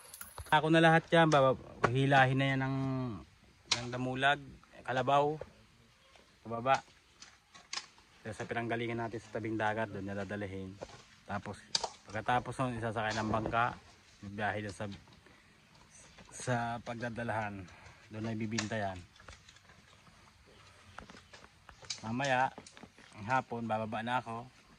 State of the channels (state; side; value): identical; both; correlation 1.00